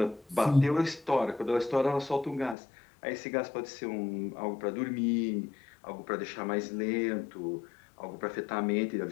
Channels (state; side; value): drops out; right; at 2.6 s